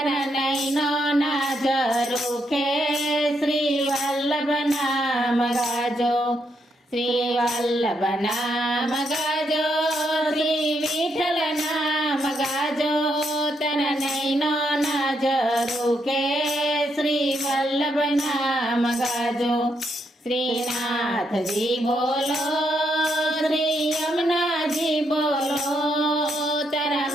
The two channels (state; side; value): normal; both; correlation 0.78